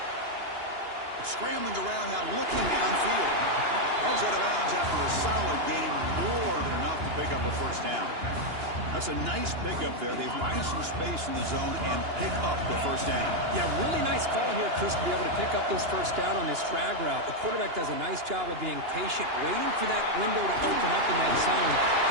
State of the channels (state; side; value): late; left; 2.9 ms